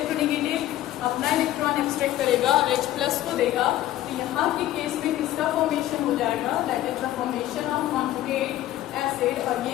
अपना इलेक्ट्रॉन एक्सट्रैक्ट करेगा और H+ को देगा। तो यहाँ के केस में किसका फॉर्मेशन हो जाएगा, that is the formation of conjugate acid, और ये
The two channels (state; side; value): quieter; right; 14.1 dB